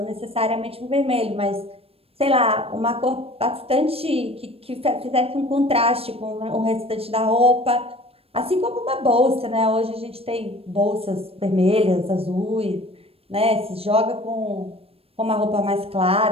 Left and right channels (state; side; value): late; left; 0.28 ms